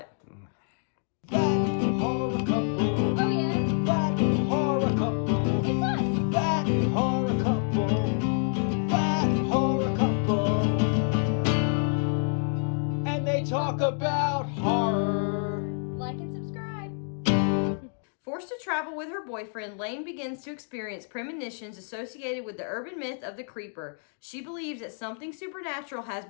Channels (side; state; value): right; silent; 56 dB below the other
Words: That horror couple. Oh yeah. That horror couple. It's us. That horror couple. That horror couple. And they talk about horror. Like and subscribe. Forced to travel with her boyfriend, Lane begins to experience premonitions associated with the urban myth of the creeper. She believes that something supernatural has